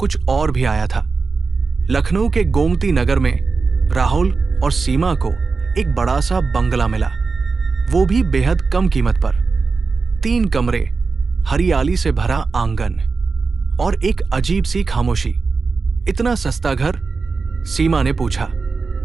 और भी आया था। लखनऊ के गोमती नगर में राहुल और सीमा को एक बड़ा सा बंगला मिला, वो भी बेहद कम कीमत पर। 3 कमरे, हरियाली से भरा आंगन और एक अजीब सी खामोशी। इतना सस्ता घर? सीमा ने पूछा।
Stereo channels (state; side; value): quieter; left; 4.4 dB